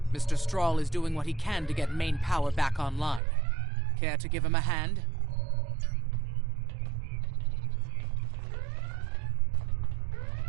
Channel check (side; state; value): left; drops out; at 3.2 s